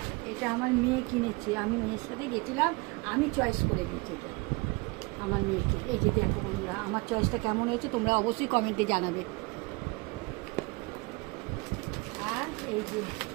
এটা আমার মেয়ে কিনেছে, আমি মেয়ের সাথে গেছিলাম, আমি চয়েস করে দিয়েছি এটা আমার মেয়েকে। এই যে দেখো বন্ধুরা, আমার চয়েসটা কেমন হয়েছে তোমরা অবশ্যই কমেন্টে জানাবে। আর এই যে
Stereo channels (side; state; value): left; quieter; 27.0 dB